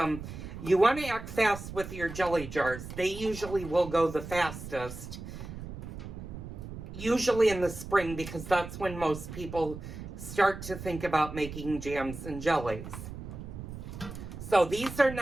You want to act fast with your jelly jars. They usually will go the fastest. Usually in the spring, because that's when most people start to think about making jams and jellies. So these are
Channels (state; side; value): noise; right; rumble, 10 dB below the sound